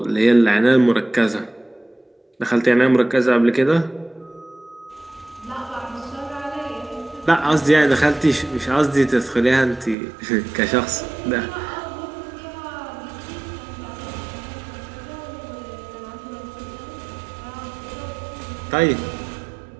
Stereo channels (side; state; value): left; drops out; at 10.0 s